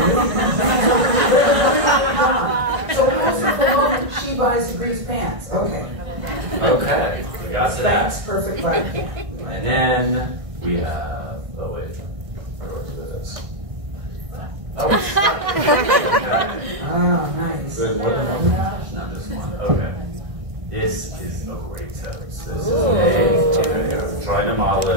So closer to the moment, she buys the Grease pants. Okay. Okay, we got to that. Thanks, perfect right. And then we have, oh wait, where was this? Oh, it's Oh, nice. good. More than one? Not just one. Okay. This is a great toast. This is I'm trying to model it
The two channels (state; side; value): late; left; 1.6 ms